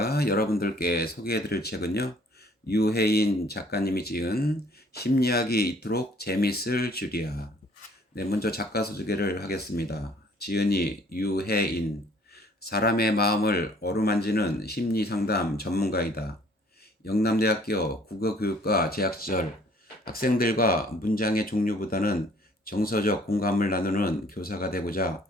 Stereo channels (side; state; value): both; normal; correlation 0.58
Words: 여러분들께 소개해드릴 책은요, 유해인 작가님이 지은 심리학이 이토록 재밌을 줄이야. 네, 먼저 작가 소개를 하겠습니다. 지은이 유해인, 사람의 마음을 어루만지는 심리상담 전문가이다. 영남대학교 국어교육과 재학 시절 학생들과 문장의 종류보다는 정서적 공감을 나누는 교사가 되고자